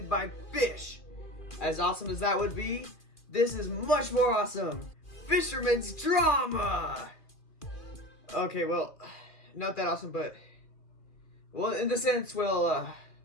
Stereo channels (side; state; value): right; late; 2.4 ms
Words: by fish. As awesome as that would be, this is much more awesome. Fisherman's drama! Okay, well, not that awesome, but... well, in the sense, well,